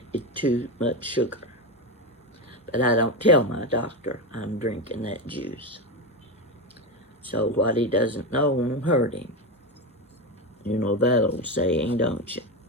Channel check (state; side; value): normal; both; correlation 0.15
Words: It's too much sugar. But I don't tell my doctor I'm drinking that juice. So what he doesn't know won't hurt him. You know that old saying, don't you?